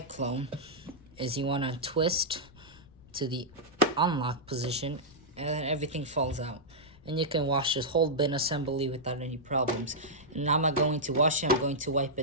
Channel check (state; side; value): noise; left; rumble, 24 dB below the sound